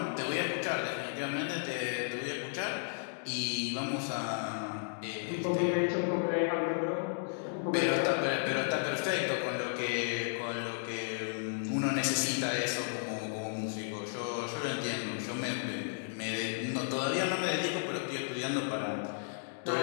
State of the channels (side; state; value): right; silent; digital silence